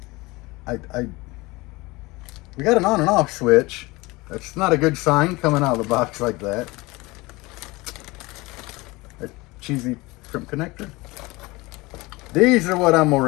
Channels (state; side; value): quieter; right; 22.6 dB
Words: We got an on and off switch. That's not a good sign coming out of the box like that. A cheesy shrimp connector. These are what I'm